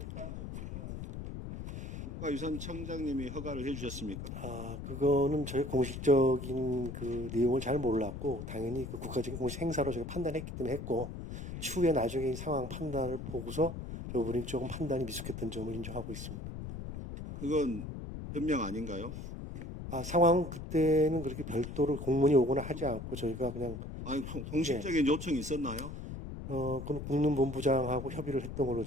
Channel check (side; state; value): left; noise; rumble, 8 dB below the sound